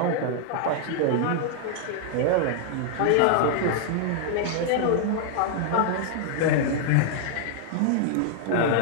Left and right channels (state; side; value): different; both; correlation 0.00